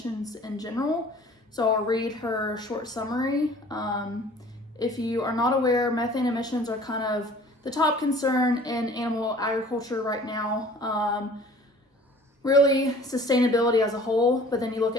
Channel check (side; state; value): both; normal; correlation 0.49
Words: in general. So I'll read her short summary. If you are not aware, methane emissions are kind of the top concern in animal agriculture right now. Really sustainability as a whole, but then you look